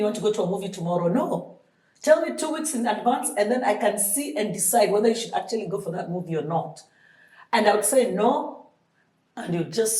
want to go to a movie tomorrow. No. Tell me 2 weeks in advance, and then I can see and decide whether you should actually go for that movie or not. And I would say no, and you'd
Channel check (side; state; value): both; identical; correlation 1.00